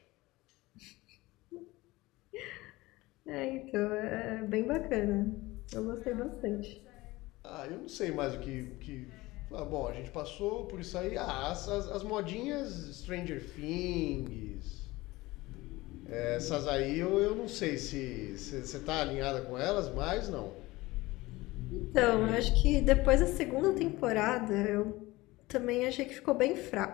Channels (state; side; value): quieter; right; 20.0 dB